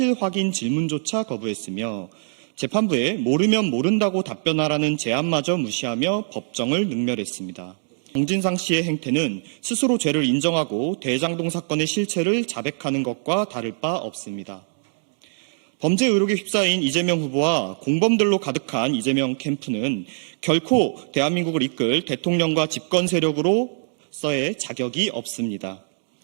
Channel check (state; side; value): silent; left; digital silence